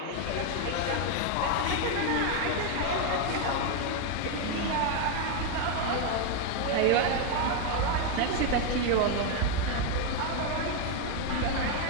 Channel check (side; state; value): both; different; correlation 0.01